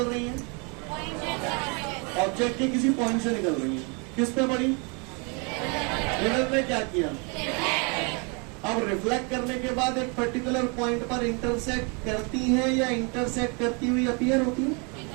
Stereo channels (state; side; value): quieter; left; 33.5 dB